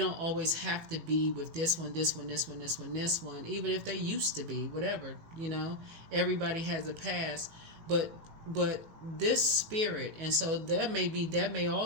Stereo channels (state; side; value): late; left; 18 ms